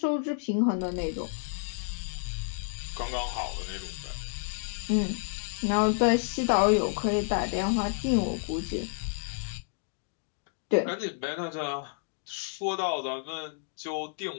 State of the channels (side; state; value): right; silent; 58 dB below the other